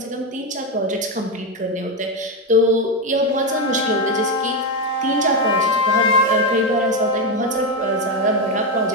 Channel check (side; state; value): both; normal; correlation 0.09